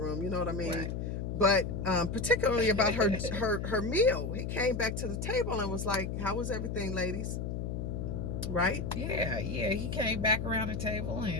You know what I mean? Right. But particularly about her meal, he came back to the table and was like, "How was everything, ladies?" Right? Yeah. He came back around the table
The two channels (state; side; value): noise; left; hum, 3 dB below the sound